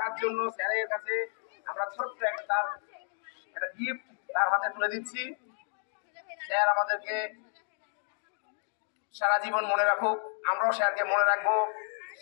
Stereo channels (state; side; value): silent; right; 57 dB below the other